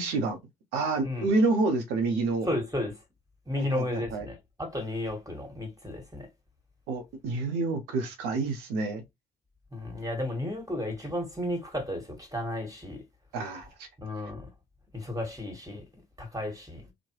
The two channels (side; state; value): both; normal; correlation 0.54